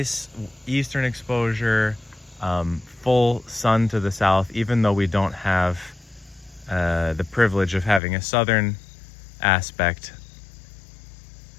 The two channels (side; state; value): right; drops out; at 8.0 s